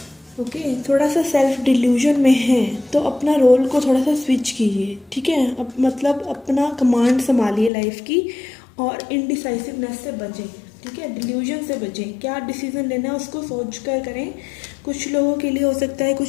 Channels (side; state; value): right; drops out; at 7.7 s